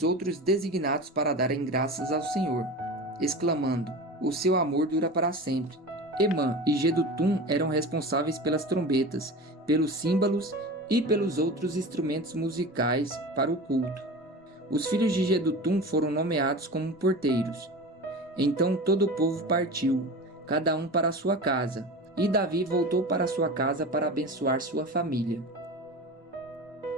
outros designados para darem graças ao Senhor, exclamando: o seu amor dura para sempre. Emã e Jedutum eram responsáveis pelas trombetas, pelos símbolos e pelos outros instrumentos musicais para o culto. Os filhos de Jedutum foram nomeados como porteiros. Então todo o povo partiu, cada um para a sua casa, e Davi voltou para sua casa para abençoar sua família.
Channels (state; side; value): normal; both; correlation 0.31